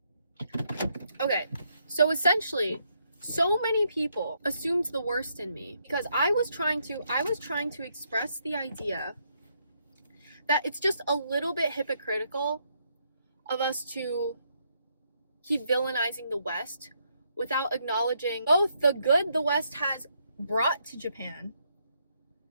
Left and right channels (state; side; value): inverted; both; correlation -0.75